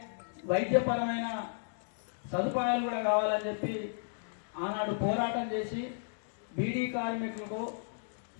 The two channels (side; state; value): right; silent; digital silence